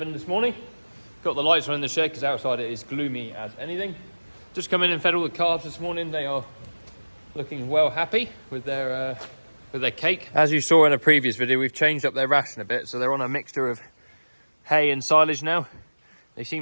this morning. Got the lights on in the shed because outside it is gloomy as anything. Just come in and fed all the calves this morning. They are looking well happy with their cake. As you saw in a previous video, we've changed up their ration a bit, so they're on a mixture of hay and silage now. They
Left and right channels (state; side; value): inverted; both; correlation -1.00